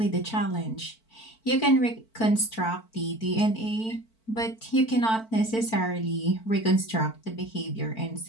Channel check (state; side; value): late; right; 4.5 ms